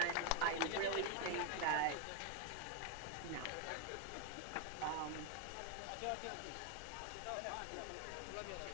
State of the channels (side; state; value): both; different; correlation 0.01